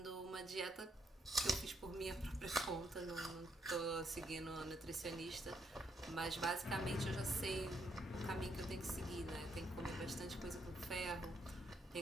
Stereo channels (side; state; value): both; normal; correlation 0.75